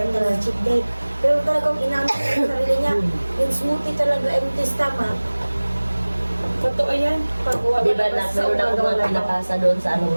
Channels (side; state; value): both; inverted; correlation -1.00